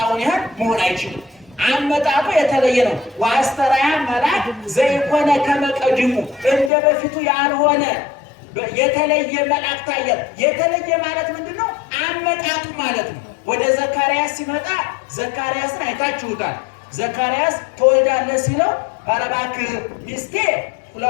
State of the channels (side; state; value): right; drops out; at 6.7 s